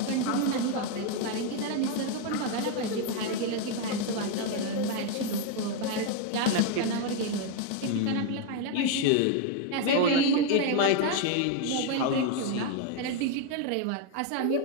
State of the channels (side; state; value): both; different; correlation 0.01